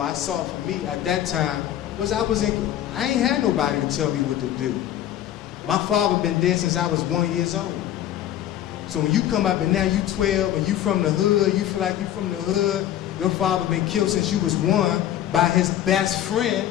I saw for me at that time, was I ain't had nobody to tell me what to do. My father been dead since I was 1 year old. So when you come up and now you 12 and you from the hood, you feel like you from the hood, your father been killed since you was 1 by his best friend,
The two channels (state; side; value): quieter; right; 11.8 dB